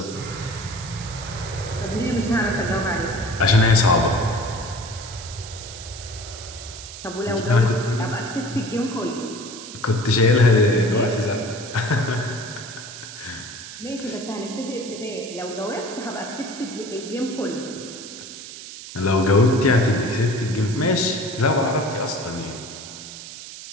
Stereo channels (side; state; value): right; noise; hiss, 12 dB below the sound